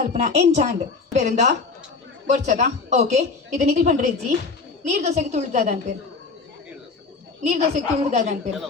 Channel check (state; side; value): quieter; right; 4.4 dB